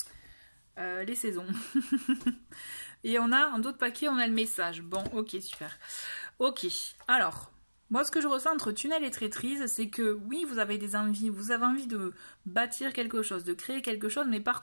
saisons. Et on a, en d'autres paquets, on a le message. Bon, ok, super. Ok, alors... Moi, ce que je ressens entre tunnel et traîtrise, c'est que oui, vous avez des envies, vous avez envie de bâtir quelque chose, de créer quelque chose, mais par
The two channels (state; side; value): inverted; both; correlation -1.00